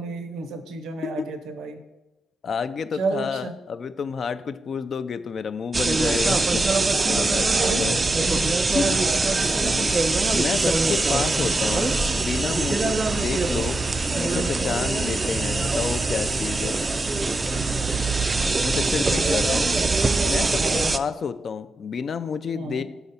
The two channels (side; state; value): both; normal; correlation 0.88